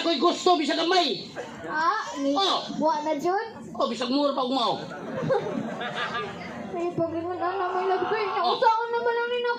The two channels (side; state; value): both; identical; correlation 1.00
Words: ko'y gusto bisag gamay. Ah, ni Oh. buwa na dyan? O bisag mura pa umaw. May pag-ingon na may lagay. Nausaon naman lang nina